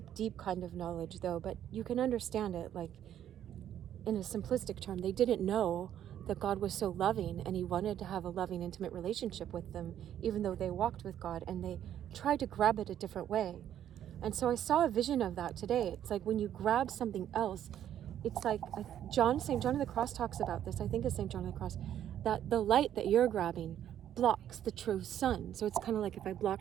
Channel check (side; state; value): left; quieter; 10.6 dB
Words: deep kind of knowledge, though, but you can understand it, like, in a simplistic term. They didn't know that God was so loving, and he wanted to have a loving, intimate relationship with them, even though they walked with God, and they tried to grab it a different way. And so I saw a vision of that today. It's like when you grab something else, it's like St. John of the Cross talks about this, I think it's St. John of the Cross, that the light that you're grabbing blocks the true sun. So it's kind of like if I